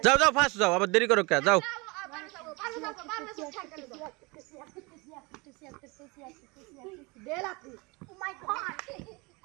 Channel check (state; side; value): quieter; left; 26.6 dB